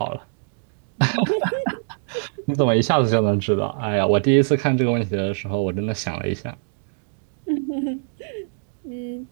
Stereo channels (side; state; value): left; silent; digital silence